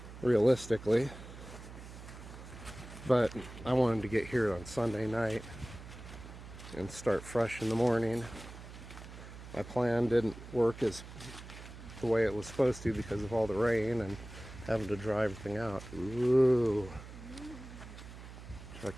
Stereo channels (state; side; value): noise; right; hum, 14 dB below the sound